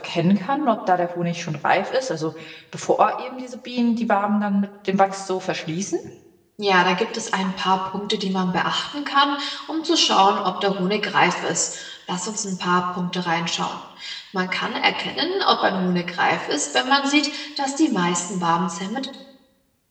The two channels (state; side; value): identical; both; correlation 1.00